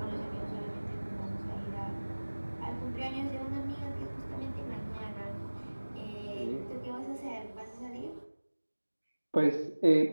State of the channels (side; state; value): both; inverted; correlation -1.00